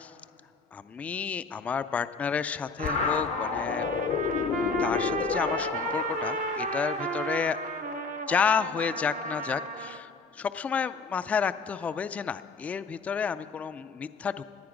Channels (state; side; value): quieter; right; 4.3 dB